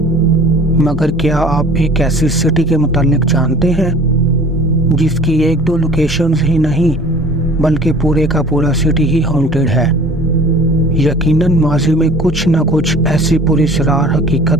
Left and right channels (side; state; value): both; normal; correlation 0.46